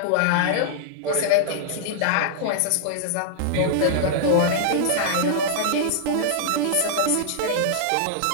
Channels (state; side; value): different; both; correlation -0.01